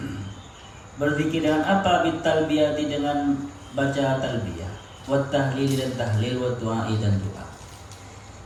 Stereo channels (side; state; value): both; identical; correlation 1.00